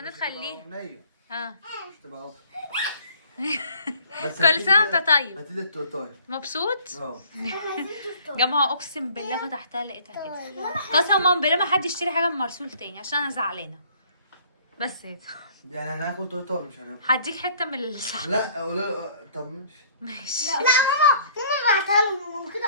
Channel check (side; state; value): both; inverted; correlation -0.56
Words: خليها. ها. مش تبقى كل سنة وانت طيب. هاتي لي التورتايه. مبسوط؟ اه. جماعة اقسم بالله فتحتها لقيتها كده. قسما بالله ما حد يشتري حاجة من مرسول تاني عشان انا زعلانة. بس كده. يعني هناكل تورتايه مش هناكل. هديك حتة من الصحن. لا قولوا. طب ماشي. ماشي. لا ماما بعتها لهم كده.